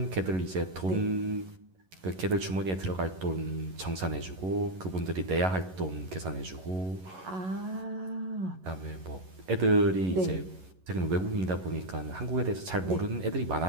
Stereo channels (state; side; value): late; left; 11 ms